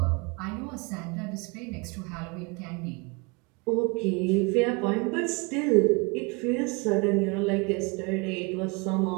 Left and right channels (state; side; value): quieter; left; 28.8 dB